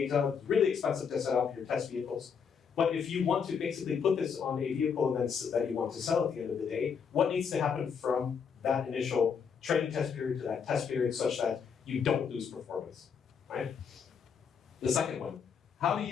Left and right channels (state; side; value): quieter; right; 6.6 dB